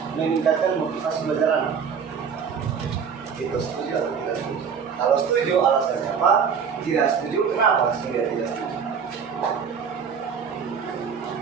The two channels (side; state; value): left; quieter; 6.7 dB